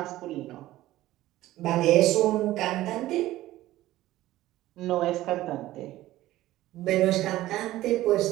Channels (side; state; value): left; quieter; 15.7 dB